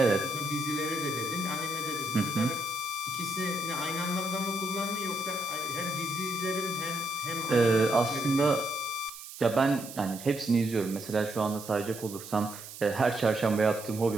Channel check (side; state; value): right; noise; hiss, 13 dB below the sound